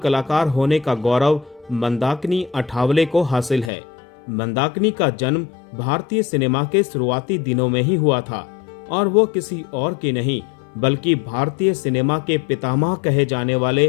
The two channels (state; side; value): drops out; right; at 3.7 s